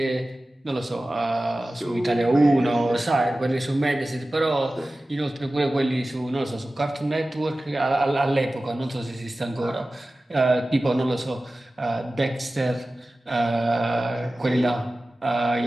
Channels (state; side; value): normal; both; correlation 0.96